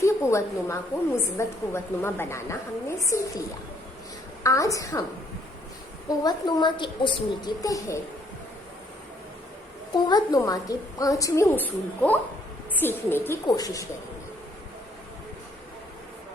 कुव्वतनुमा को मुस्बत कुव्वतनुमा बनाना हमने सीख लिया। आज हम कुव्वतनुमा के उसूल के तहत कुव्वतनुमा के 5वें उसूल को सीखने की कोशिश करेंगे।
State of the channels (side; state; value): both; normal; correlation 0.66